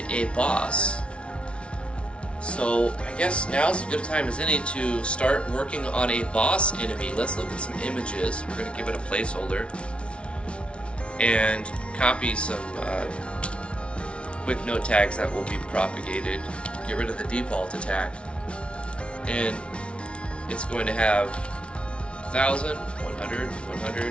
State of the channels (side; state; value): right; late; 0.059 ms